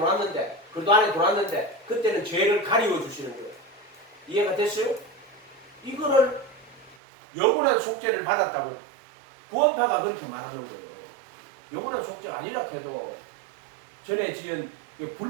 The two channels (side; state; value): left; drops out; at 7.0 s